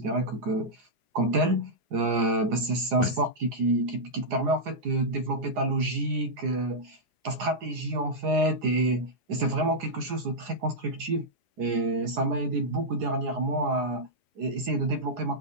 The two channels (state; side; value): late; left; 4.8 ms